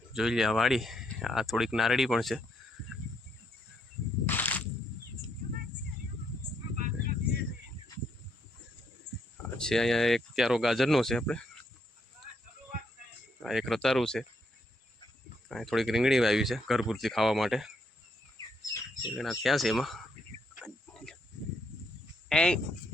જોઈ લે આ વાડી. આ થોડીક નારળી પણ છે. છે અહીંયા એક ક્યારો ગાજરનો છે આપણે. આ એક રતારું છે. અહીં થોડીક રીંગણી વાવી છે ઘર પૂરતી ખાવા માટે. રીંગણા થયા છે એમાં.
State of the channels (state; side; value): normal; both; correlation 0.75